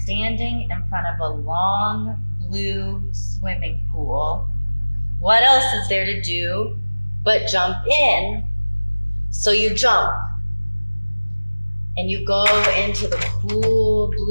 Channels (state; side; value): inverted; both; correlation -1.00